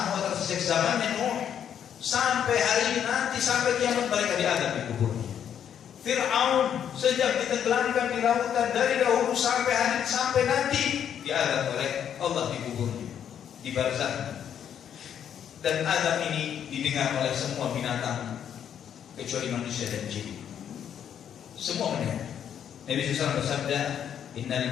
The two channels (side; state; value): right; quieter; 9.0 dB